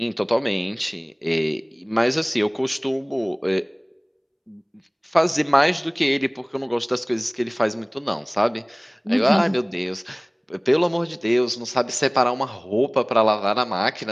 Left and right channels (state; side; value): identical; both; correlation 1.00